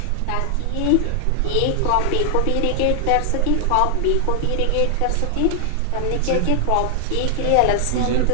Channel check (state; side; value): different; both; correlation 0.00